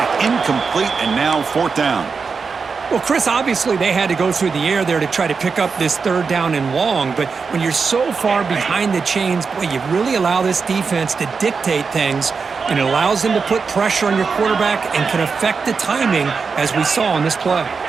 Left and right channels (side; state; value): left; quieter; 5.2 dB